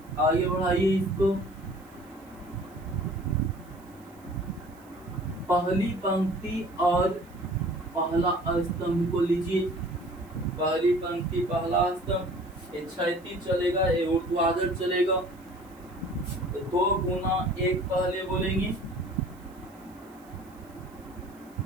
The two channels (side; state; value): right; noise; hiss, 29 dB below the sound